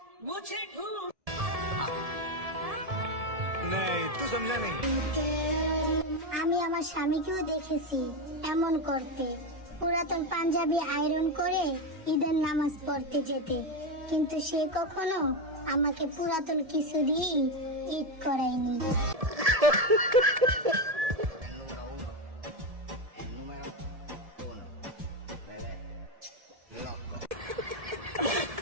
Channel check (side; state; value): left; late; 1.7 ms